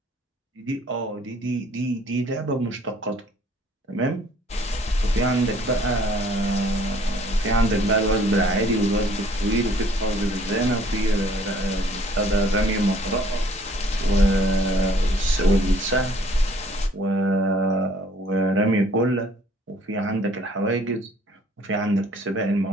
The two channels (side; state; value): both; normal; correlation 0.58